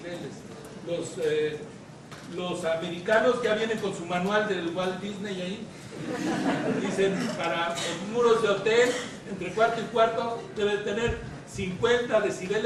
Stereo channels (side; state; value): both; identical; correlation 1.00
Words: Los americanos ya vienen con su manual del Walt Disney ahí. Dicen, para los muros de hotel, entre cuarto y cuarto, debe tener 50